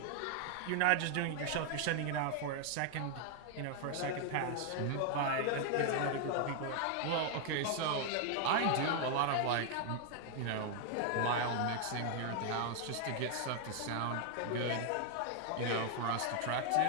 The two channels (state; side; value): different; both; correlation 0.00